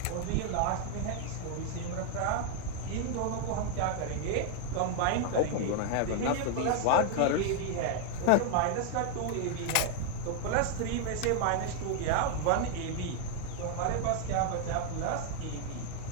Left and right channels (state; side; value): different; both; correlation 0.00